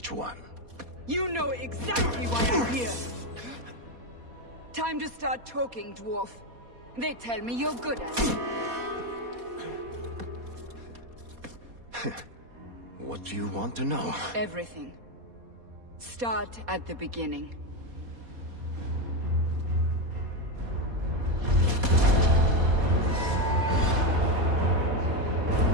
one? You know exactly why I'm here! Time to start talking, dwarf. They tell me you're good at it. What do you want to know? Everything. Start at the beginning.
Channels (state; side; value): late; left; 4.2 ms